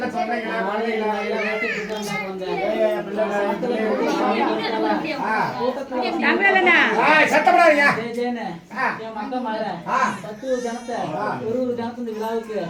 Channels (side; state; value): both; identical; correlation 1.00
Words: சொந்தங்களா ஜனத்தை ஒரு ஜனத்து இந்த விழாவுக்கு